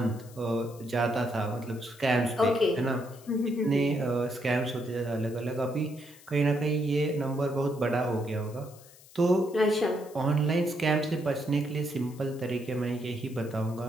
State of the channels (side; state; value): left; noise; hiss, 23 dB below the sound